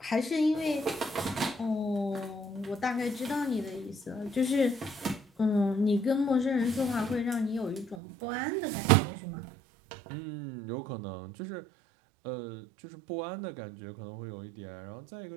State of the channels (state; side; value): drops out; left; at 8.0 s